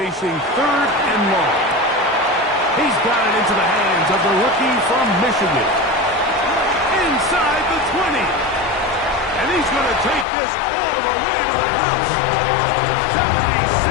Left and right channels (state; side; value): drops out; right; at 10.2 s